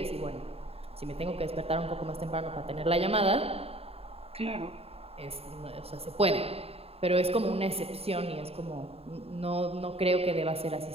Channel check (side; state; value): left; late; 0.29 ms